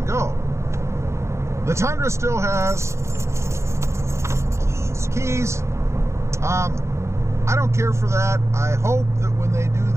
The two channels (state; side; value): late; left; 0.14 ms